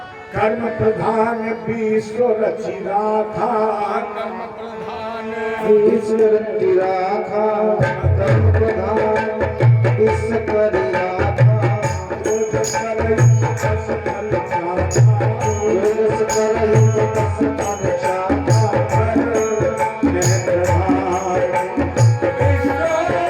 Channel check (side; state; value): both; identical; correlation 1.00